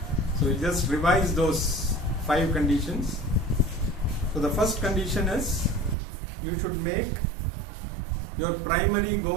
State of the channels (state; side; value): drops out; left; at 6.0 s